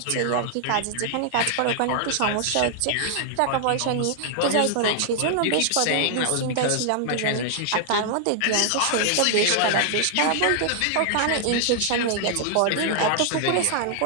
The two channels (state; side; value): different; both; correlation 0.00